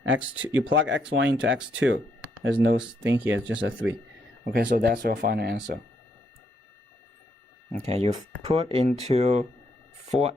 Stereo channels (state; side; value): normal; both; correlation 0.75